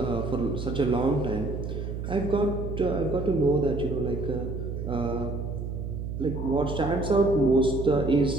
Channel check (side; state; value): right; noise; hum, 5 dB below the sound